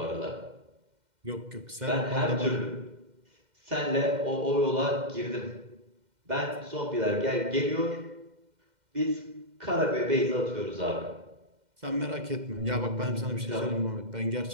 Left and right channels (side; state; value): left; late; 2.1 ms